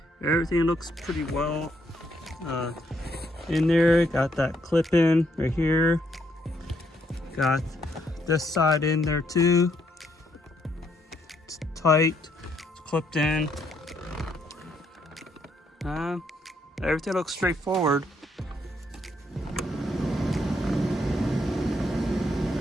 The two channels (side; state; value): both; normal; correlation 0.73